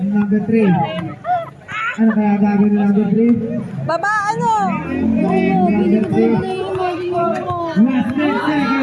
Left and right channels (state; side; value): identical; both; correlation 1.00